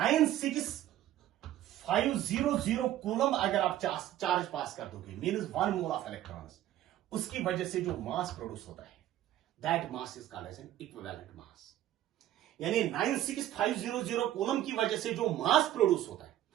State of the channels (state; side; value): quieter; left; 13.1 dB